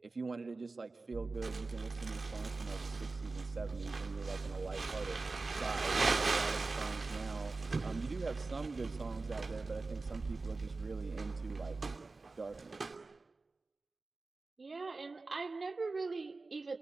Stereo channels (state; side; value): quieter; left; 3.6 dB